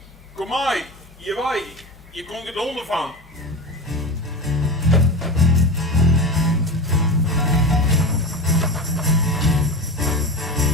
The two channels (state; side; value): normal; both; correlation 0.26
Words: Kom maar. Je wij. Je komt het onder van.